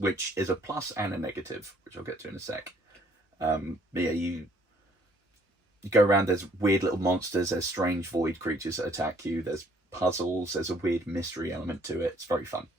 is a plus and a negative, which I'll get to in a sec. But yeah, you go around, there's weird little monsters, there's strange void creatures that attack you, there's puzzles, there's a weird mystery element to it. It's very fun.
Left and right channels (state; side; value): normal; both; correlation 0.62